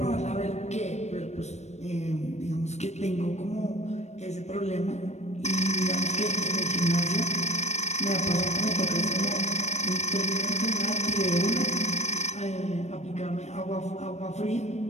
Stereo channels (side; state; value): right; late; 0.32 ms